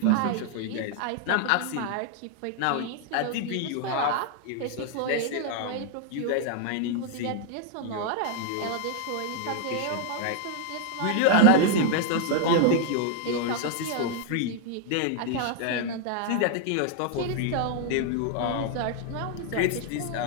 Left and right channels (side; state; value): both; different; correlation 0.00